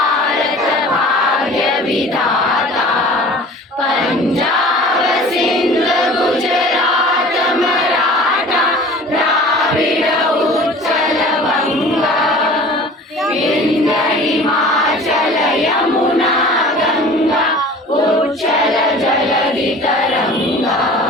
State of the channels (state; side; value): normal; both; correlation 0.43